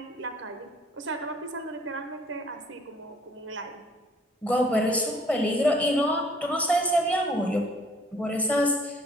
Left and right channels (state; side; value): normal; both; correlation 0.57